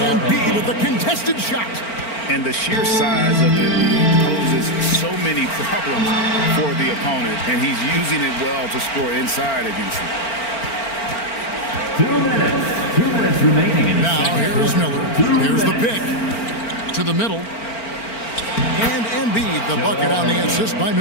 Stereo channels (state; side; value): late; right; 4.4 ms